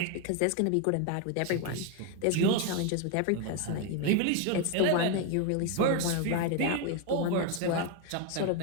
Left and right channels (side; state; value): both; different; correlation 0.01